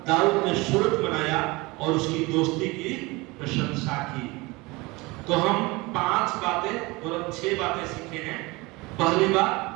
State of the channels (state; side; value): quieter; left; 23.7 dB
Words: दाऊद ने सुरत बनाया और उसकी दोस्ती की प्रशंसा की। तो हम 5 बातें और 6 बातें सीखे हैं। पहली बात,